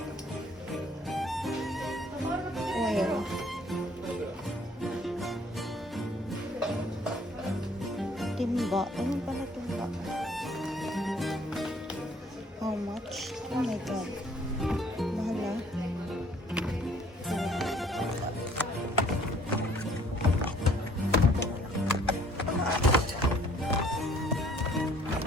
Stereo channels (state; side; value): normal; both; correlation 0.59